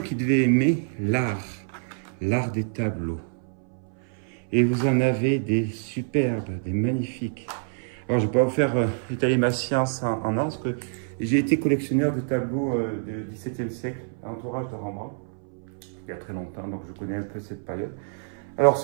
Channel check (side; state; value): left; silent; 59 dB below the other